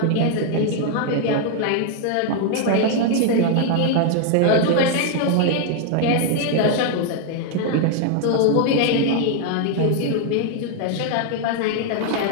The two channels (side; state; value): both; different; correlation 0.00